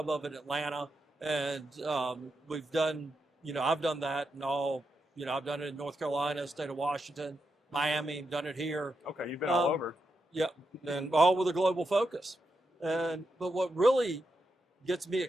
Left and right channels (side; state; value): both; normal; correlation 0.85